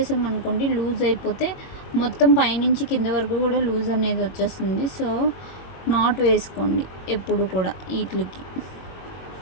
లూజ్ అయిపోతే మొత్తం పైనుంచి కింద వరకు కూడా లూజ్ అనేది వచ్చేస్తుంది. సో నాట్ వేసుకోండి ఎప్పుడు కూడా వీటికి.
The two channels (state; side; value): late; right; 22 ms